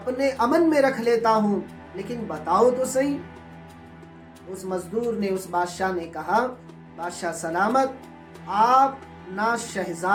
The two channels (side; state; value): both; identical; correlation 1.00